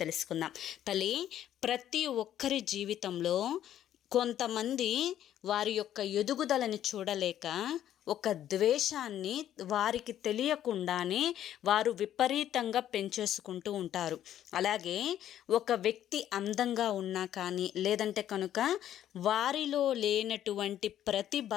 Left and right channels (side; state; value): right; quieter; 11.3 dB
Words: తెలుసుకుందాం. తల్లి, ప్రతి ఒక్కరి జీవితంలో కొంతమంది వారి యొక్క ఎదుగుదలని చూడలేక ఒక ద్వేషాన్ని వారికి తెలియకుండానే వారు విపరీతంగా పెంచేసుకుంటూ ఉంటారు. అలాగే ఒక వ్యక్తి అందంగా ఉన్నా కానీ, లేదంటే కనుక వారిలో లేనటువంటి ప్రతిభ